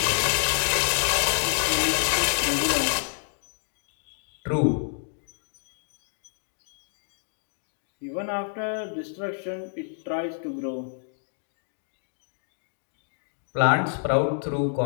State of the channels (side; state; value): right; silent; digital silence